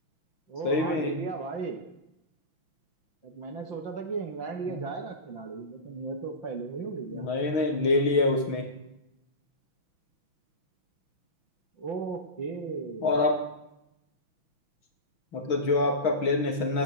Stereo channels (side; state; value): right; late; 6.3 ms